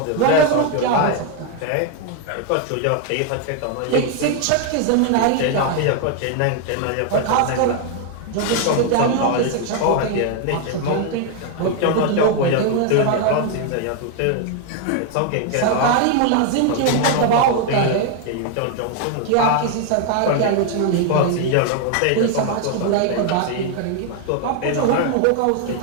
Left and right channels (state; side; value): different; both; correlation 0.01